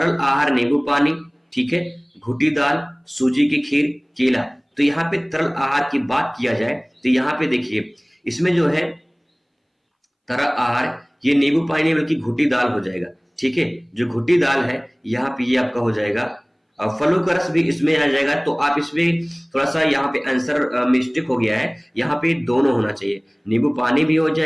आहार नींबू पानी, ठीक है, घुटी दाल, सूजी की खीर, केला। तो यहाँ पे तरल आहार की बात किया जाए तो यहाँ पे देखिए इसमें जो है तरल आहार ये नींबू पानी बल्कि घुटी दाल हो जाएगा, ठीक है। जो घुटी दाल है यहाँ पे ये आपका हो जाएगा। फलों का रस भी इसमें आ जाएगा। तो आप इसमें थोड़ा सा यहाँ पे आंसर मिस्टेक हो गया है, यहाँ पे दोनों होना चाहिए, नींबू पानी भी हो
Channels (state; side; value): identical; both; correlation 1.00